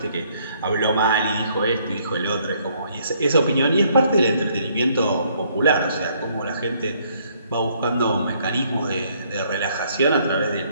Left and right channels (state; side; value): inverted; both; correlation -0.66